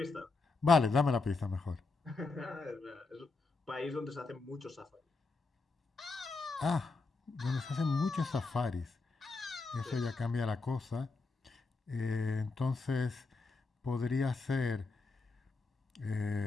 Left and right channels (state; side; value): quieter; right; 3.9 dB